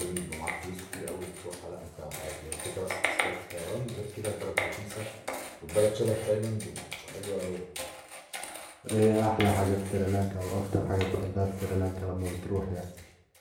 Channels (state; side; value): identical; both; correlation 1.00